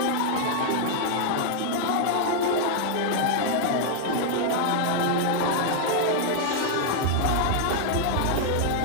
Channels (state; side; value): different; both; correlation 0.00